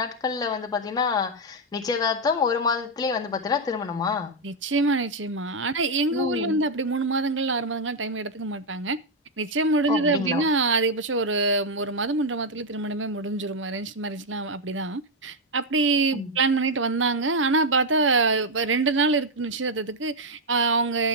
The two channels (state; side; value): normal; both; correlation 0.01